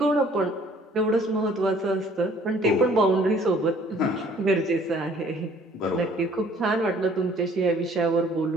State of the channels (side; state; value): both; normal; correlation 0.57